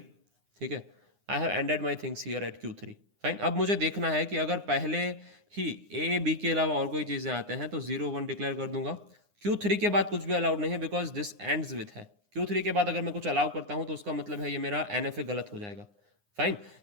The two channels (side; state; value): left; late; 9.7 ms